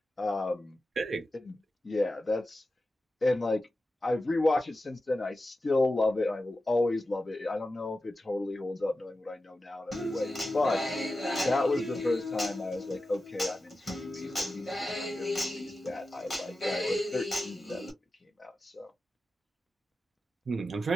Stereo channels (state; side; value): normal; both; correlation 0.92